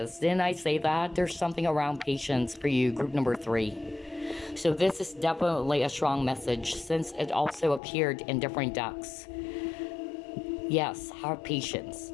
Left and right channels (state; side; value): drops out; right; at 7.8 s